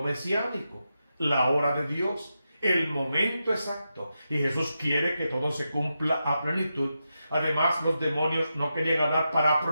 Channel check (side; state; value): both; inverted; correlation -0.88